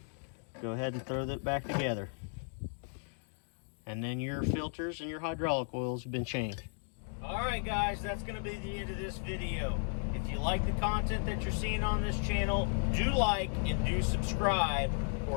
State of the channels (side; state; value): right; silent; 55 dB below the other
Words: go ahead and throw that back together, and then your filters and your hydraulic oils have been changed. Alright guys, that's going to be the end of this video. If you like the content that you're seeing on this channel, do like and do subscribe,